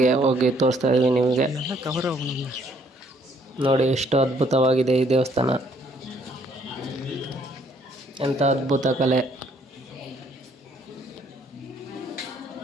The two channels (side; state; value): both; normal; correlation 0.65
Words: ಹೋಗಿ ತೋರಿಸ್ತಾ ಇದ್ದೀವಿ ನಿಮಗೆ. ನೋಡಿ ಎಷ್ಟು ಅದ್ಭುತವಾಗಿದೆ ಈ ದೇವಸ್ಥಾನ, ಎಂಥ ಅದ್ಭುತ ಕಲೆ,